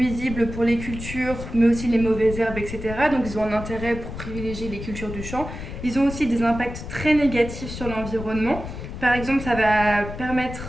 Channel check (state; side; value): noise; left; rumble, 9 dB below the sound